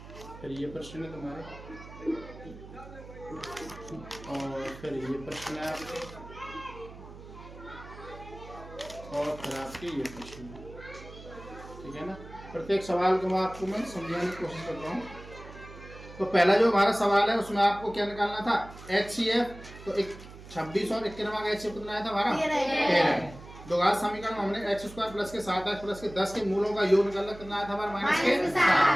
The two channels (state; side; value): noise; right; hum, 16 dB below the sound